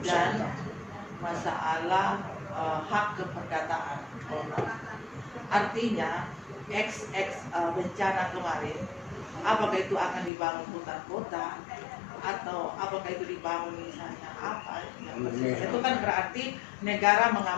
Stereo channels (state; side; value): drops out; right; at 10.3 s